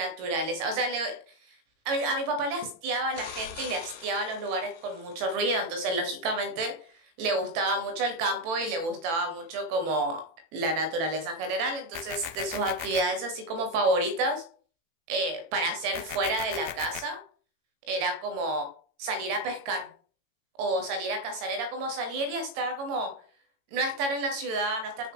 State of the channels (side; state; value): left; late; 18 ms